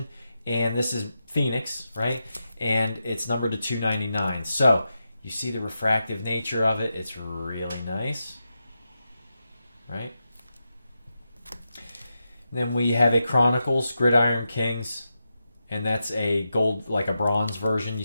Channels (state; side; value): inverted; both; correlation -0.88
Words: And this is Phoenix, right? And it's numbered to 299. So you see the refractive nature of it. It's really nice, right? And then we have a Chronicles Gridiron Kings. And that's a gold, like a bronze version. You